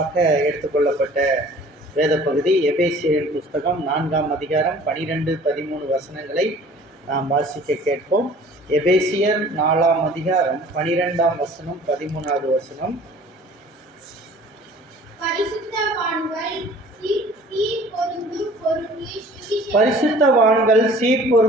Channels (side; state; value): both; normal; correlation 0.49